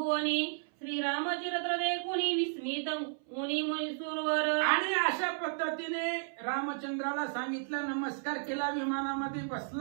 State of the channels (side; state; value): left; silent; 56 dB below the other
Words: श्रीरामचरित्र देखुनी विस्मित मुनी मुनीसुरवर. आणि अशा पद्धतीने रामचंद्राला सांगितलं, नमस्कार केला, विमानामध्ये